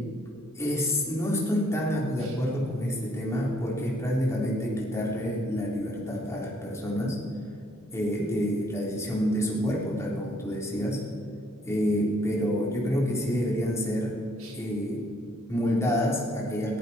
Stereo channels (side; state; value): both; normal; correlation 0.67